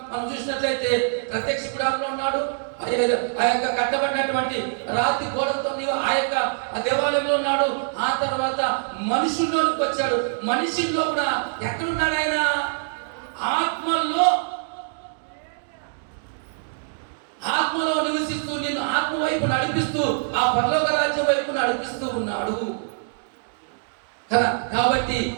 మనం చూసినట్లయితే ప్రత్యక్ష గుడారంలో ఉన్నాడు. ఆ యొక్క కట్టబడినటువంటి రాతి గోడలతో ఆ యొక్క దేవాలయంలో ఉన్నాడు. ఆ తర్వాత మనుషుల్లోనికి వచ్చాడు. మనుషుల్లో కూడా ఎక్కడున్నాడు ఆయన? ఆత్మలో నివసిస్తూ నిన్ను ఆత్మ వైపు నడిపిస్తూ ఆ పరలోక రాజ్యం వైపు నడిపిస్తూ ఉన్నాడు కదా. కాబట్టి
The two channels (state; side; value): silent; left; digital silence